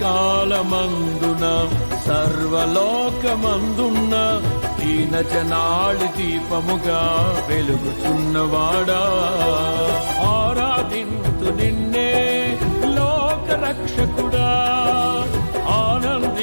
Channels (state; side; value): inverted; both; correlation -1.00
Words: సర్వలోకమందున్న దీన జనాళి దీపముగా వెలుగుచున్నవాడా ఆరాధింతు నిన్నే లోక రక్షకుడా